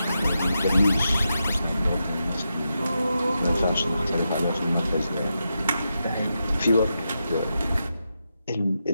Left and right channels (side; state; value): both; inverted; correlation -0.87